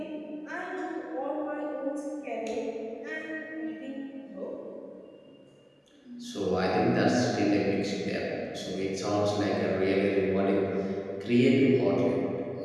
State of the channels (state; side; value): identical; both; correlation 1.00